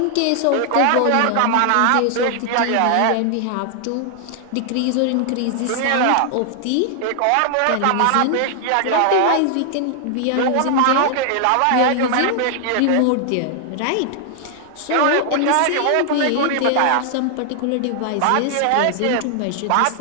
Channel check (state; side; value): different; both; correlation 0.00